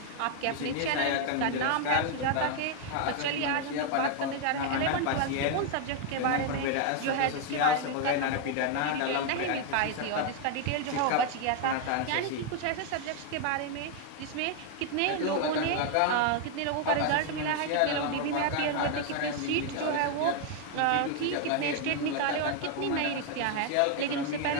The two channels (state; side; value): different; both; correlation 0.00